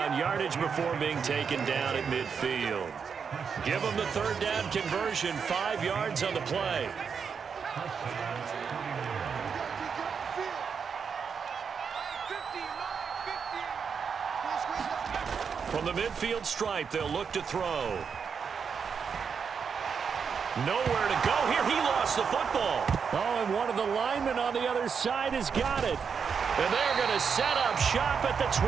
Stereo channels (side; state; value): left; quieter; 6.3 dB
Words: yardage before being taken down at midfield. Give him the third down conversion, 5 yards on the play. From the midfield stripe, they'll look to throw. Nowhere to go here. He lost the football. Oh, and one of the linemen on the other side has got it. And they're going to set up shop at the